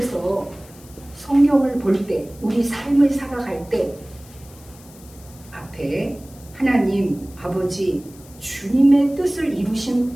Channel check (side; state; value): left; noise; hiss, 23 dB below the sound